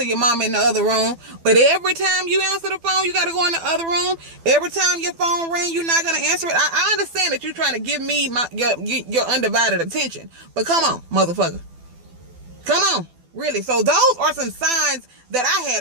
your mama in the other room. But every time you answer the phone, you got to go in the other room. Every time your phone rings, you're not going to answer it. I understand that you're trying to give me your undivided attention. But come on, motherfucker. Come on. Really. So those are some signs that I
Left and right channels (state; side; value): late; left; 12 ms